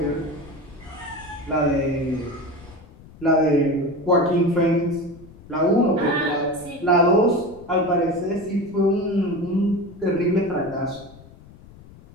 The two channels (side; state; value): left; noise; rumble, 21 dB below the sound